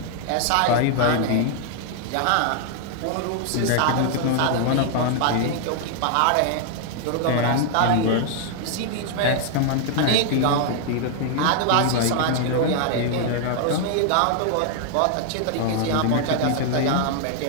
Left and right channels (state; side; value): different; both; correlation 0.00